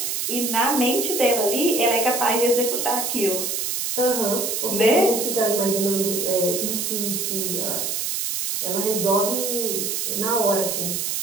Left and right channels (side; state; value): right; noise; hiss, 1 dB below the sound